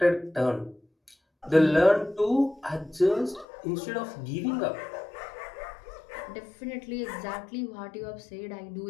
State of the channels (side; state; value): right; drops out; at 3.5 s